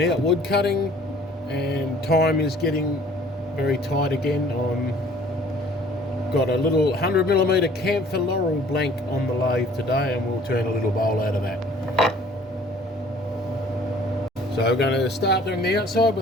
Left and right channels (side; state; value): both; normal; correlation 0.54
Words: out wood cutting and time is getting very tight again. I've got a little 100mm Camphor Laurel blank on the lathe today and we'll turn a little bowl out of that. So we're going to start doing the outside